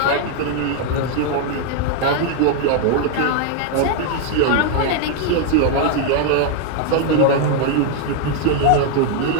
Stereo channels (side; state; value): both; different; correlation 0.00